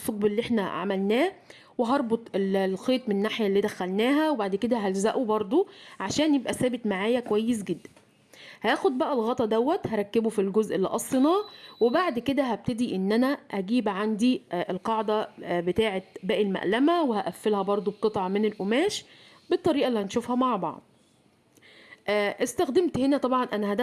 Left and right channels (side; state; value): both; identical; correlation 1.00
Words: اللي احنا عملناه، وهربط الخيط من الناحيه اللي دخلناها، وبعد كده هلزقه برضو عشان يبقى ثابت معايا كويس جدا. هاخد بقى الغطا دوت هركبه في الجزء اللي قصيناه، وبعد كده هبتدي ان انا اجيب عندي القاعدة بتاعة باقي المقلمة، وهقفلها برضو بقطعة من القماش بالطريقة اللي هنشوفها مع بعض. استخدمت هنا طبعا انا